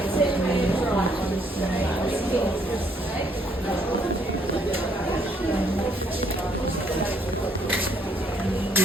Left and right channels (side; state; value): both; normal; correlation 0.68